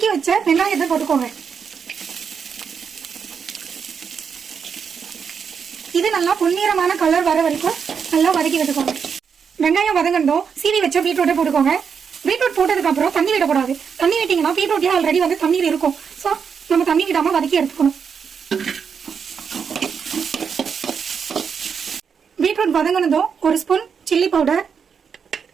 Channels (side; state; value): left; quieter; 6.6 dB